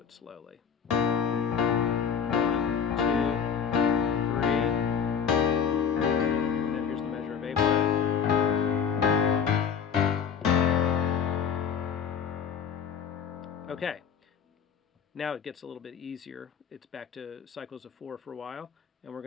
slowly. 1, 2, 3, and then here's the measure of A flat. Okay, now it gets a little bit easier. It's back to cycles of 4 for a while, and we're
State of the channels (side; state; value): right; quieter; 7.2 dB